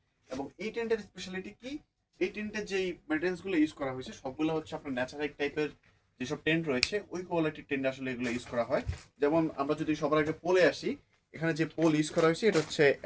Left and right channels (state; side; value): identical; both; correlation 1.00